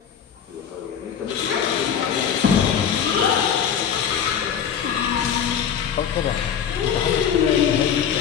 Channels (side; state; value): right; quieter; 8.2 dB